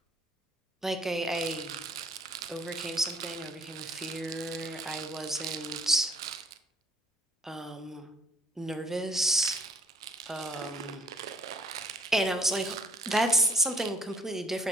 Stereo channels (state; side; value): normal; both; correlation 0.60